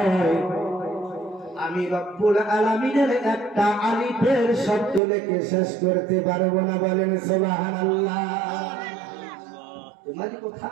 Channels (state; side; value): drops out; left; at 5.0 s